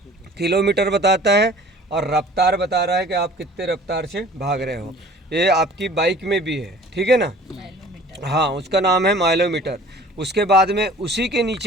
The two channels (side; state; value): both; normal; correlation 0.48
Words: किलोमीटर बताता है और रफ्तार बता रहा है कि आप कितने रफ्तार से भाग रहे हो। ये आपकी बाइक में भी है, ठीक है ना। हाँ, उसका नाम है माइलोमीटर। उसके बाद में उसी के